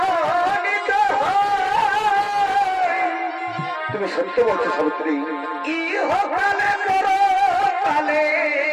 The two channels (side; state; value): both; identical; correlation 1.00